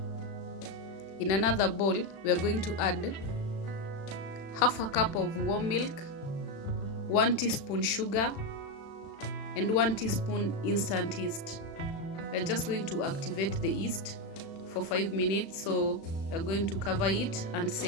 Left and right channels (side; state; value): right; late; 36 ms